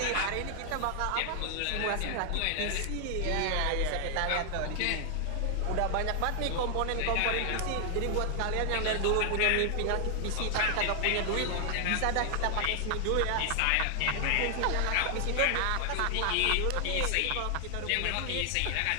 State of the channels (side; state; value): both; different; correlation 0.00